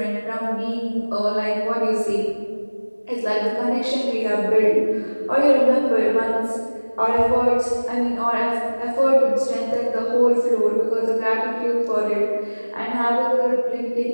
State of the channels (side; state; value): both; inverted; correlation -1.00